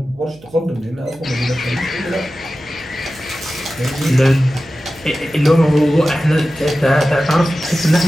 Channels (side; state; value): right; noise; hum, 24 dB below the sound